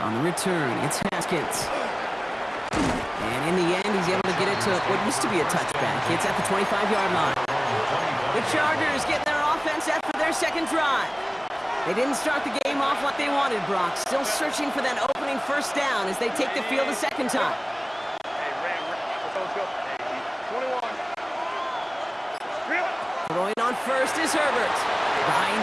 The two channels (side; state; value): both; identical; correlation 1.00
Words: the return, it's Haskins. And in the end, he's able to get it to what used to be a touchback. It's at the 25-yard line. The Chargers getting their offense set for their second drive. They didn't start the game off like they wanted, Brock. Still searching for that opening first down as they take the field a second time. Throwing on first is Herbert.